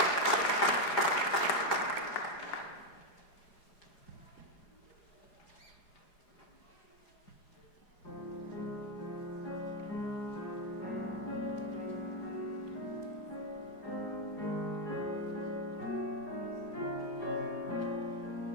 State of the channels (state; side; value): late; right; 4.9 ms